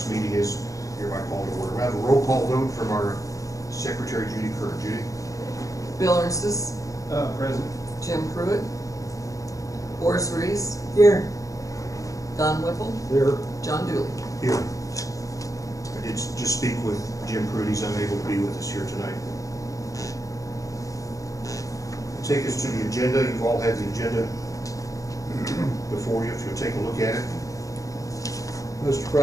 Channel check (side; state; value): right; late; 0.16 ms